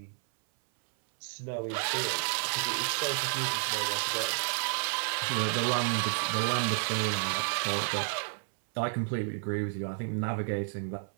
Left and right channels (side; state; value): left; silent; 57 dB below the other